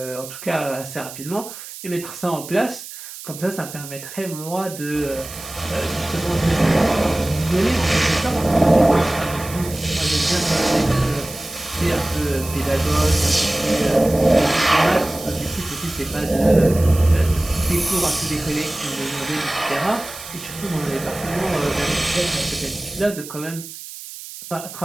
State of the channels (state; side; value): noise; right; hiss, 13 dB below the sound